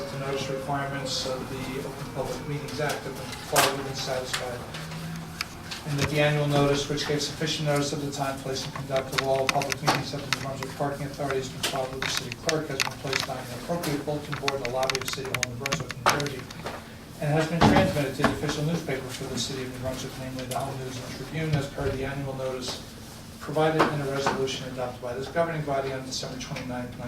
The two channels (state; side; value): identical; both; correlation 1.00